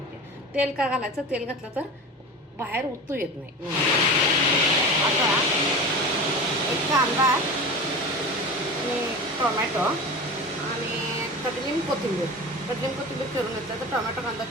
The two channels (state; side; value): normal; both; correlation 0.31